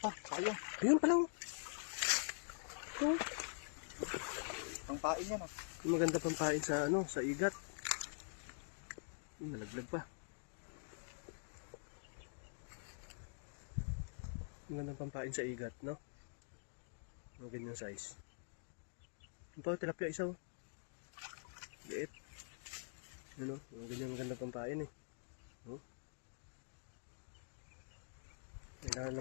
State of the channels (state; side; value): silent; right; digital silence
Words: Sayang. Ayun pala, oh. Ito. Pangpain yan ah. Yung maganda pampain sa ano, sa igat. Nalaglag pa. Magandang pampain sa igat, no? Ang ganyang size. Yung pa, tilapia isa, oh. Liit. Yun, oh. Ang ganyang magandang pampain, eh. Oh. May